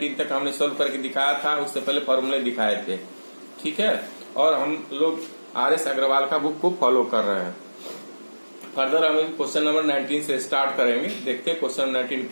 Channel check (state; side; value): inverted; both; correlation -1.00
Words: तक हमने सोल्व करके दिखाया था, उससे पहले फॉर्मूले दिखाए थे, ठीक है। और हम लोग RS अग्रवाल का बुक को फॉलो कर रहे हैं। फर्दर हम क्वेश्चन नंबर 19 से स्टार्ट करेंगे, देखते हैं क्वेश्चन 19